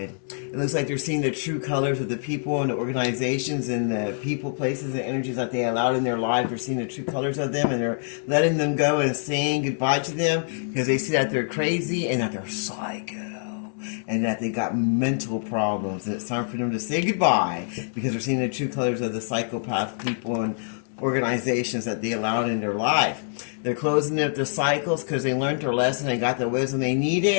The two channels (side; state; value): right; silent; digital silence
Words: It looks like they're seeing the true colors of the people and the organizations and the people, places, and energies that they allowed in their lives. They're seeing the true colors of them and they're letting them go and saying goodbye to them because they see that they're crazy and that they're psycho. And that they got mental problems. And it's time for them to say goodbye because they're seeing the true colors of the psychopath people and organizations that they allowed in their life. They're closing up the cycles because they learned their lesson and got the wisdom they